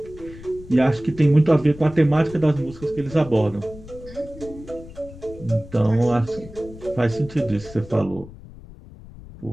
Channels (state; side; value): noise; left; rumble, 17 dB below the sound